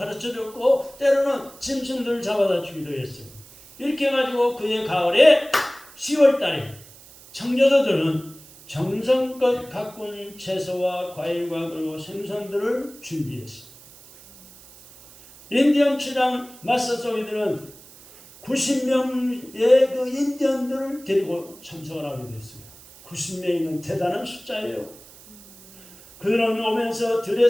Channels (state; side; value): noise; right; hiss, 21 dB below the sound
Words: 때로는 짐승들을 잡아다 주기도 했어요. 이렇게 해가지고 그해 가을에 10월 달에 청교도들은 정성껏 가꾼 채소와 과일과 그리고 생선들을 준비했습니다. 인디언 추장 마사소이드는 90명의 그 인디언들을 데리고 참석을 하게 됐습니다. 90명이면 대단한 숫자예요. 그들은 오면서